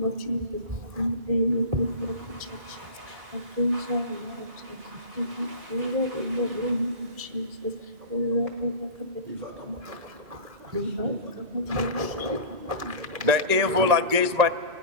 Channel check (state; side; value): late; left; 1.9 ms